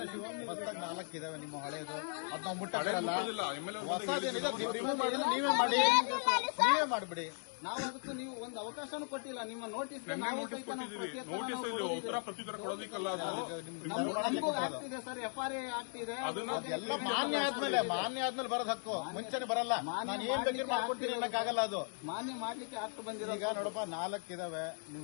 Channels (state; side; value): silent; right; 53 dB below the other